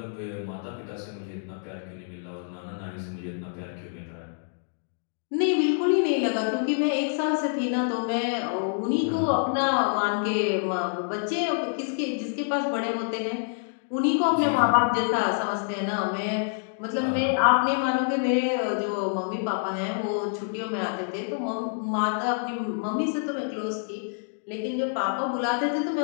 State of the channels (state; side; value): silent; right; digital silence